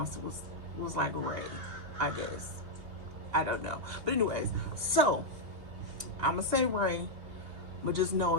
it was like Ray, I guess. I don't know. But anyways, so I'm going to say Ray, but just know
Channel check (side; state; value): left; late; 2.8 ms